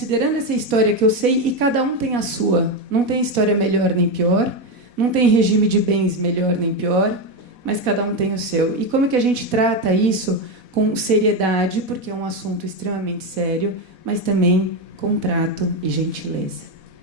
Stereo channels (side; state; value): left; late; 4.1 ms